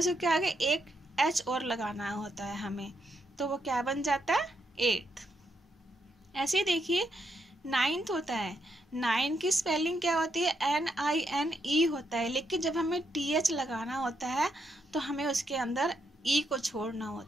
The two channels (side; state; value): both; normal; correlation 0.79